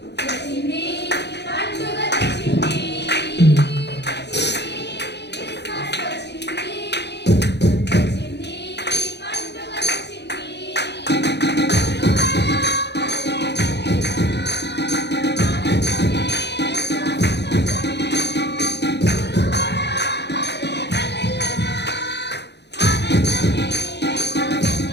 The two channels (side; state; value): right; late; 0.50 ms